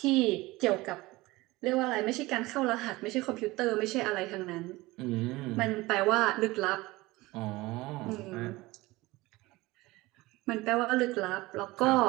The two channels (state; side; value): quieter; left; 20.4 dB